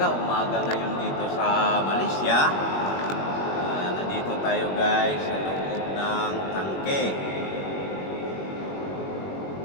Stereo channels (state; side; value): late; right; 21 ms